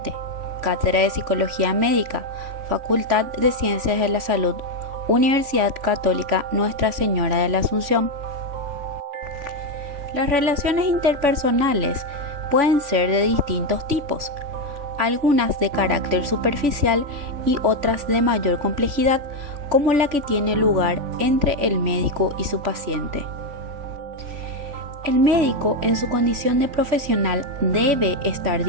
Cátedra de Psicología Médica, Facultad de Ciencias de la Salud, Universidad Católica Nuestra Señora de la Asunción. Las relaciones interpersonales pueden ser de distintos tipos, algunas de carácter superficial y otras de mayor complejidad, como la que tiene lugar entre el médico y su paciente. El médico, en su condición de profesional, debe estar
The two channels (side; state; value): left; late; 3.5 ms